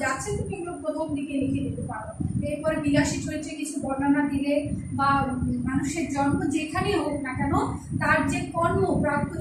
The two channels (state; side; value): identical; both; correlation 1.00